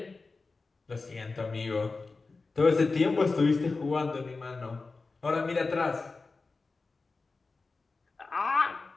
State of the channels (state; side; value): quieter; right; 3.9 dB